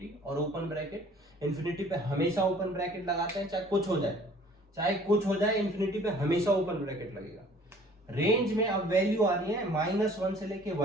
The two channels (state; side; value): normal; both; correlation 0.53